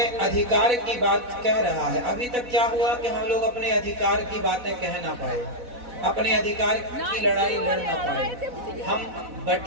अधिकार की बात कह रहा है। अभी तक क्या हुआ कि हम लोग अपने अधिकार की बातें कह ना पाए, अपने अधिकार की लड़ाई लड़ ना पाए, हम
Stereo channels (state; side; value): late; left; 4.1 ms